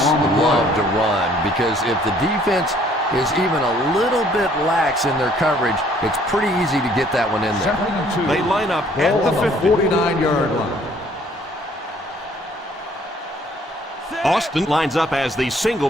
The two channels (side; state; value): both; normal; correlation 0.60